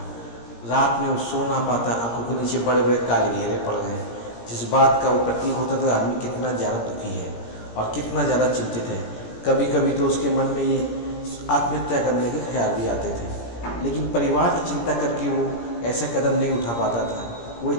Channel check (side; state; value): right; late; 17 ms